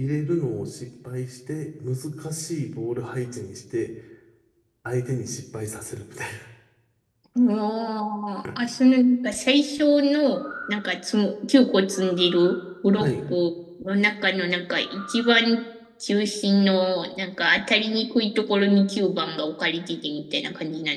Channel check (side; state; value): both; identical; correlation 1.00